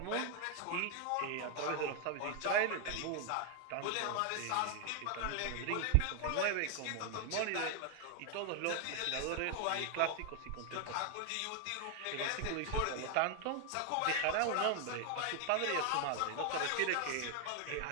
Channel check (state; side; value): different; both; correlation 0.00